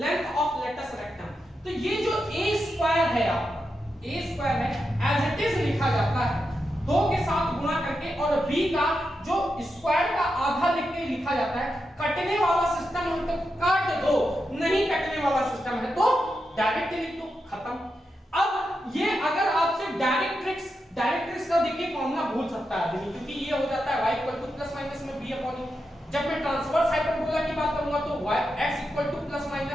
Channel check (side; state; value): both; normal; correlation 0.87